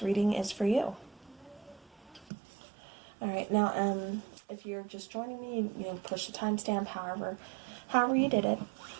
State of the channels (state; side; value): drops out; left; at 2.3 s